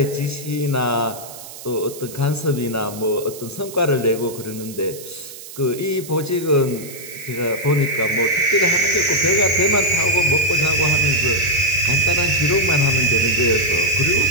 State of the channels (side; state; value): right; noise; hiss, 15 dB below the sound